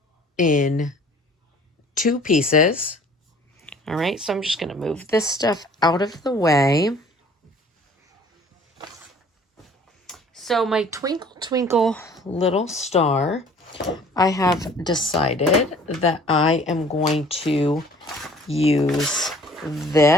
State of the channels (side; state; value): both; normal; correlation 0.52